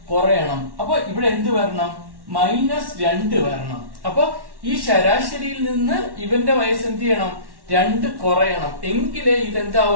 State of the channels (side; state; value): left; late; 1.1 ms